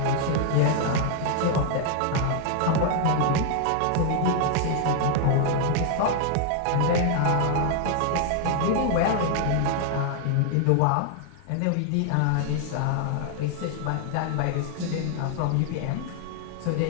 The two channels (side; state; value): both; different; correlation 0.00